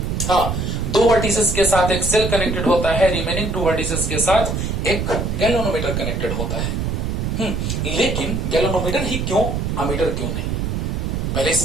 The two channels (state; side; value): noise; right; rumble, 1 dB below the sound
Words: दो वर्टिसेस के साथ एक सेल कनेक्टेड होता है, रिमेनिंग टू वर्टिसेस के साथ एक गैल्वेनोमीटर कनेक्टेड होता है। लेकिन गैल्वेनोमीटर ही क्यों, अमीटर क्यों नहीं? पहले इस